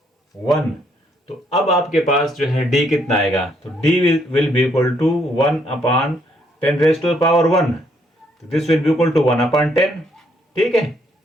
1, तो अब आपके पास जो है d कितना आएगा? तो d will be equal to 1 upon 10 raised to power 1। तो this will be equal to 1 upon 10, ठीक है।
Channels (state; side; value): normal; both; correlation 0.71